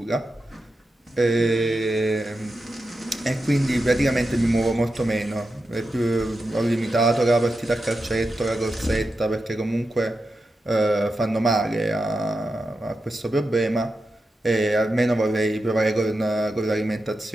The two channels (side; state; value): both; normal; correlation 0.89